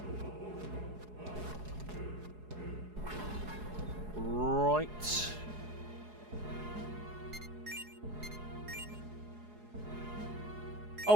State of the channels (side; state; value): left; late; 4.7 ms